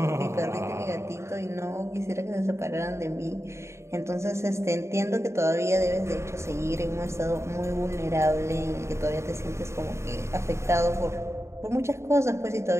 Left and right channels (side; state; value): left; late; 0.13 ms